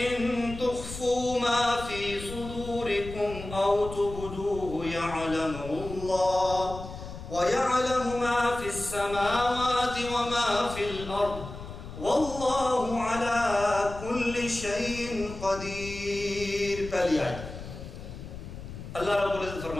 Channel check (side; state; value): left; noise; rumble, 11 dB below the sound